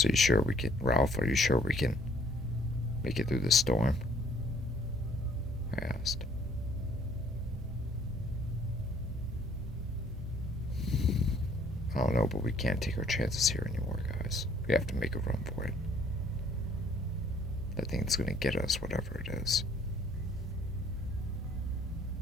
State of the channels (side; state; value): both; normal; correlation 0.60